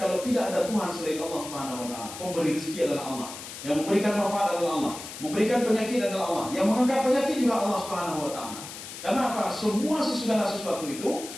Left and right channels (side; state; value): left; noise; hiss, 11 dB below the sound